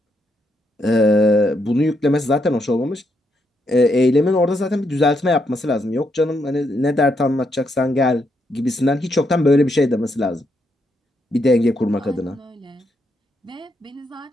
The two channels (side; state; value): both; normal; correlation 0.78